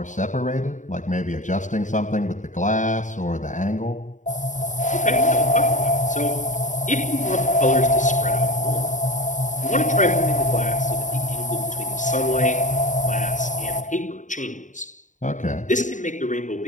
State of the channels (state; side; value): late; right; 0.36 ms